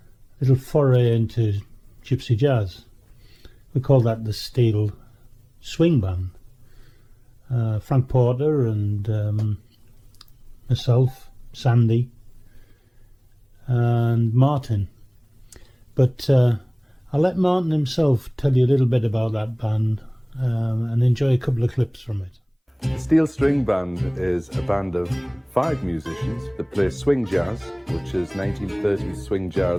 little foray into gypsy jazz. We called that the Steel Swing Band. Frank Porter and myself, Sandy and Martin. But I'll let Martin himself tell you a little bit about that band and enjoy a couple of clips from it. The Steel String Band is a band of 5 musicians that play swing jazz, which is 1930s swing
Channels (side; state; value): both; identical; correlation 1.00